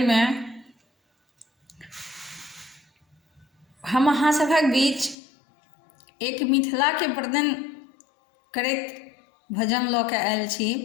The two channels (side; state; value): right; drops out; at 5.2 s